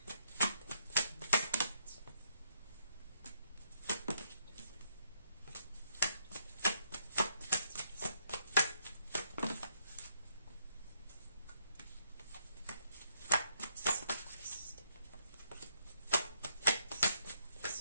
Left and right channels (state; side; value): inverted; both; correlation -0.73